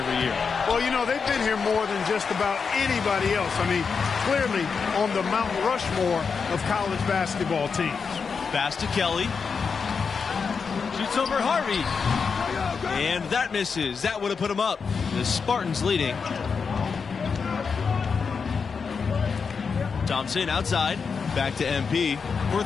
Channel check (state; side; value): quieter; right; 5.5 dB